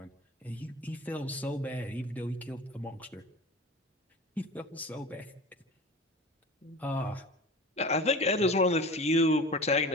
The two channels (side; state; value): both; normal; correlation 0.36